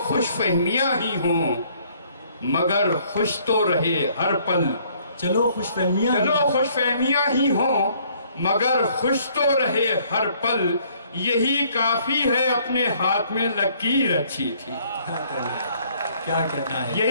خوش فہمیاں ہی ہوں مگر خوش تو رہے ہر پل. چلو خوش فہمیاں ہی ہوں مگر خوش تو رہے ہر پل. یہی کافی ہے اپنے ہاتھ میں لکیر اچھی تھی. کیا کہنا ہے؟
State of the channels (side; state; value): both; inverted; correlation -0.62